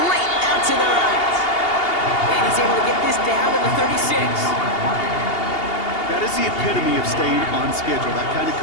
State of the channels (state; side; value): late; right; 2.8 ms